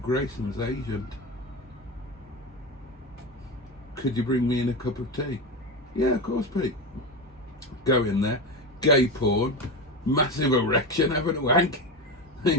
agent. Could you bring me in a cup of tea? Yeah, of course, Pete. Go in there, gay porn, massive erection, having a wank.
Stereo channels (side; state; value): both; normal; correlation 0.20